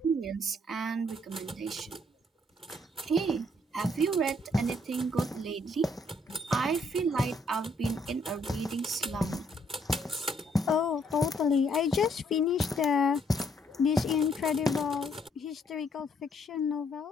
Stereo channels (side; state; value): both; normal; correlation 0.69